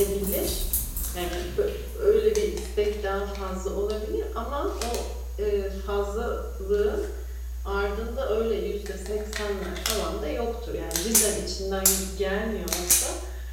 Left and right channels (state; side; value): identical; both; correlation 1.00